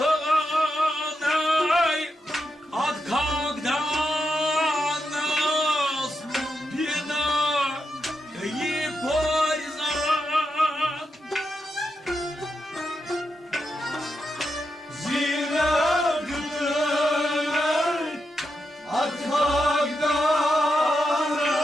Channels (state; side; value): normal; both; correlation 0.86